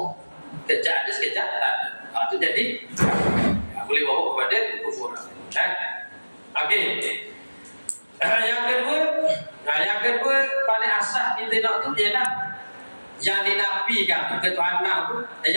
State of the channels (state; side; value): inverted; both; correlation -1.00